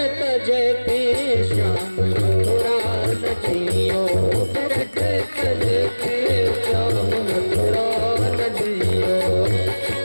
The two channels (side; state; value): both; inverted; correlation -1.00